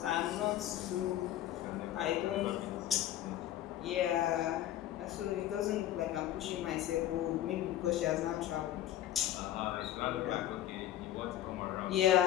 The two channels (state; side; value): quieter; right; 12.6 dB